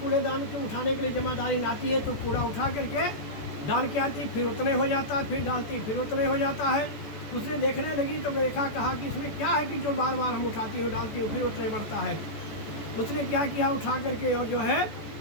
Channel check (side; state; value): right; late; 14 ms